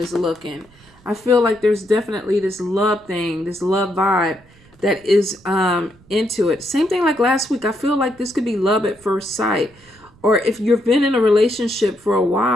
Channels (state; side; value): noise; right; rumble, 28 dB below the sound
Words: looking, I feel like there's definitely this love thing, this love vibe that is into it. Same thing like last week. I feel like this could be love at first sight. Or if you've been in a relationship for a